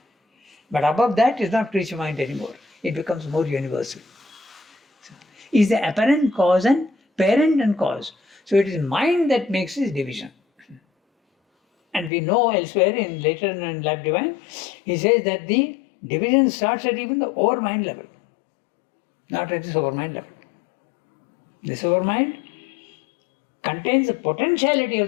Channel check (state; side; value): drops out; right; at 12.1 s